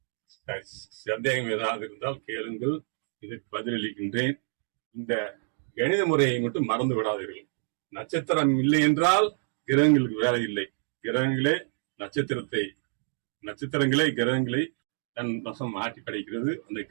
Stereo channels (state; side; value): silent; left; 56 dB below the other